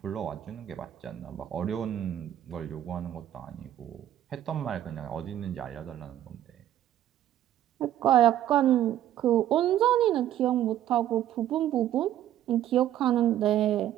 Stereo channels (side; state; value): left; quieter; 11.9 dB